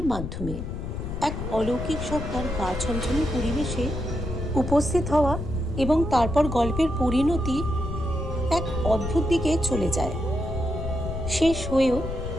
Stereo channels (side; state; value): left; noise; rumble, 5 dB below the sound